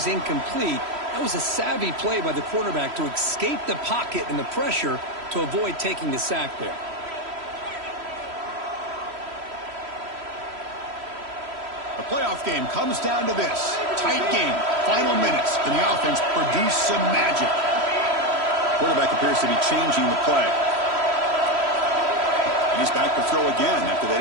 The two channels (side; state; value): left; late; 3.1 ms